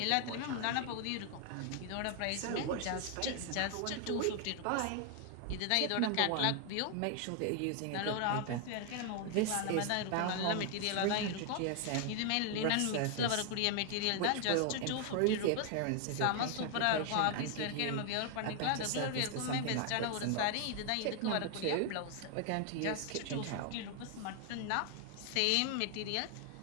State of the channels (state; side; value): different; both; correlation 0.00